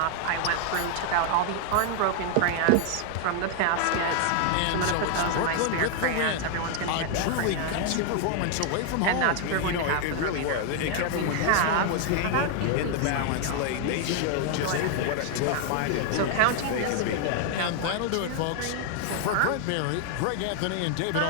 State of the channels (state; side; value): different; both; correlation 0.00